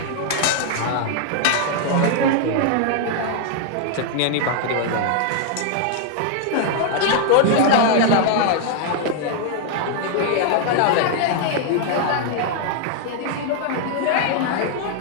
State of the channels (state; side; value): different; both; correlation 0.00